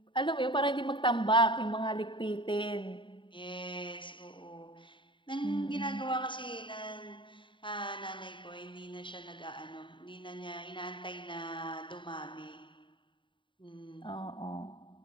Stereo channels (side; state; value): right; late; 0.24 ms